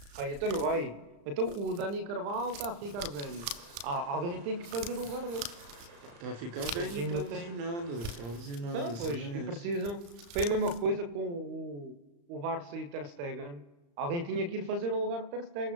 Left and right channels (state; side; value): late; left; 35 ms